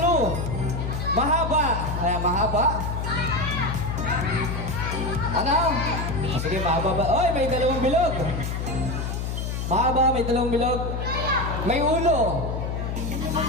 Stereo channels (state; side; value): noise; left; hum, 3 dB below the sound